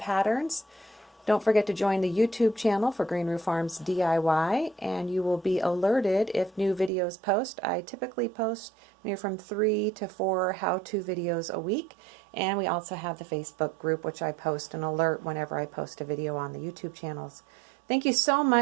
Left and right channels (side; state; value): left; drops out; at 6.9 s